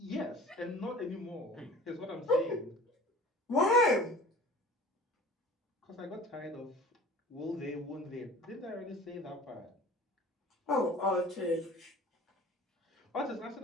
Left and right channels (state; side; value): normal; both; correlation 0.44